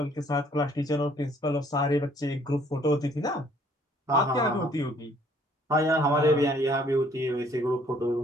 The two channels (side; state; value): both; normal; correlation 0.61